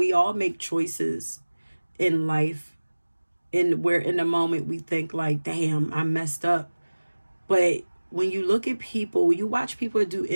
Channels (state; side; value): inverted; both; correlation -1.00